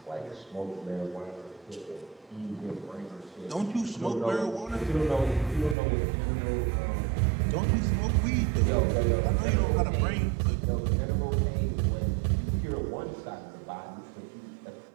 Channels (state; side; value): drops out; left; at 5.8 s